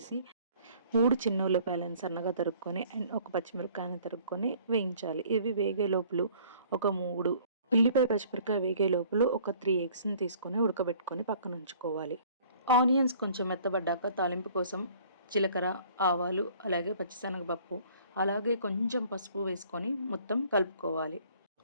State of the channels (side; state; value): both; inverted; correlation -0.55